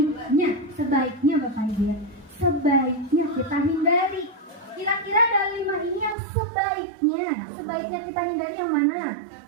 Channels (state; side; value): drops out; left; at 6.2 s